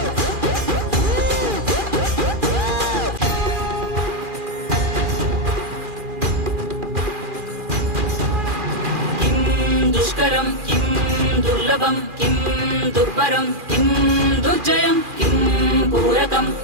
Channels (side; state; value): left; late; 2.4 ms